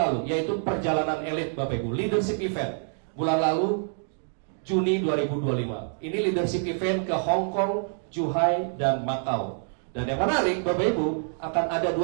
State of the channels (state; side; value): silent; left; digital silence